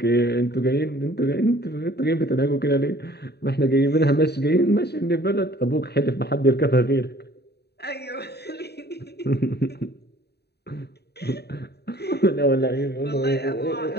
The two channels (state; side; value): late; right; 0.48 ms